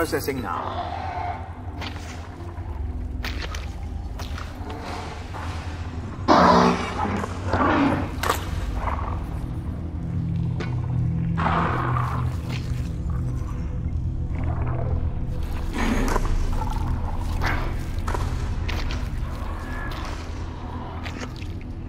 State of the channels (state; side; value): identical; both; correlation 1.00